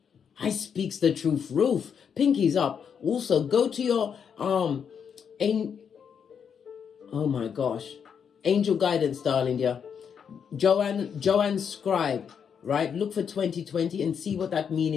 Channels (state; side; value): quieter; right; 7.3 dB